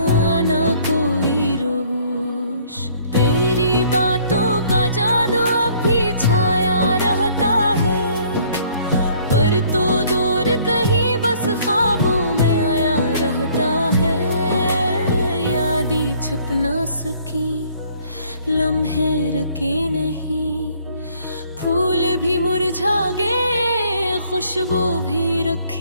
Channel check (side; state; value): both; inverted; correlation -0.60